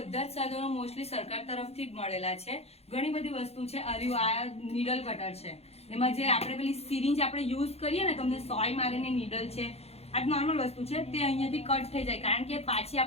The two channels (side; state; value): right; late; 0.30 ms